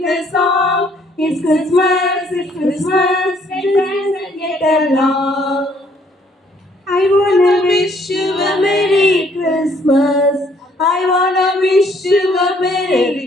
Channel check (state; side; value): normal; both; correlation 0.65